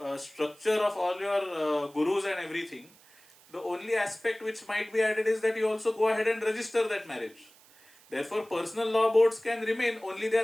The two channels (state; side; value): noise; right; hiss, 26 dB below the sound